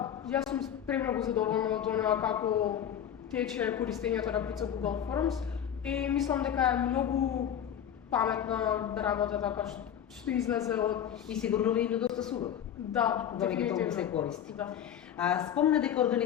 јас сум премногу задоволна од она како тече користењето на Брицо Google Forms и мислам дека е многу паметна работа така што излезе од... И сигурно ви е доста сувак. Да, дефинитивно се користи. Да. Спомна дека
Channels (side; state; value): right; quieter; 9.5 dB